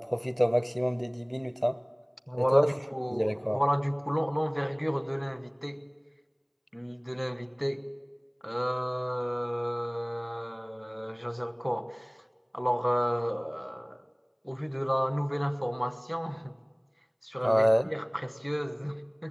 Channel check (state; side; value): identical; both; correlation 1.00